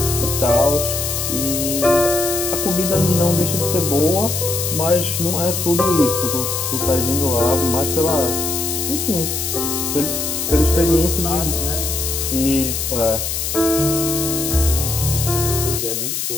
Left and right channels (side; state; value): left; noise; hiss, 2 dB below the sound